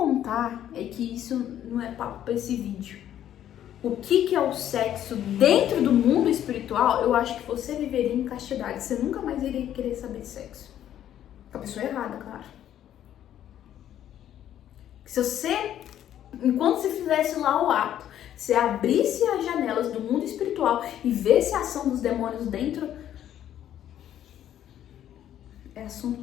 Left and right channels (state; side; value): quieter; right; 11.1 dB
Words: é que isso não é papo para esse vídeo. O que é o sexo dentro do mundo espiritual, eu acho que você viveria em castidade. Você nunca mais iria querer saber de sexo. Com a pessoa errada, claro. Se você, enquanto você fizesse lá o ato, você abrisse as janelas do mundo espiritual e visse a ação dos demônios dentro, é assunto